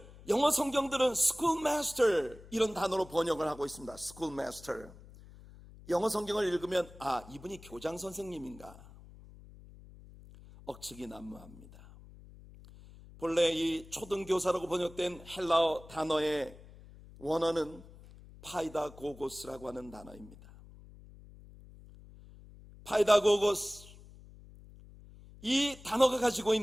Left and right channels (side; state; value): left; noise; hum, 20 dB below the sound